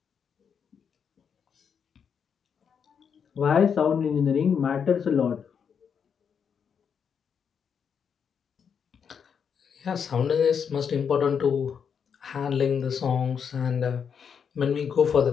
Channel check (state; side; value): quieter; right; 7.0 dB